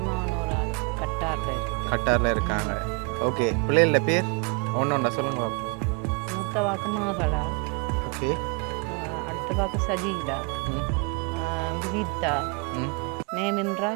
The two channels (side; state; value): left; quieter; 34.6 dB